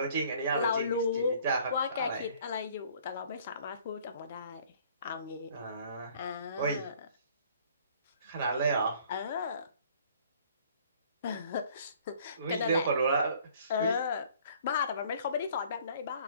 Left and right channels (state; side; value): inverted; both; correlation -0.56